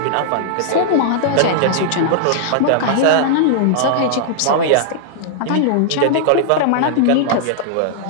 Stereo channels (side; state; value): both; different; correlation -0.01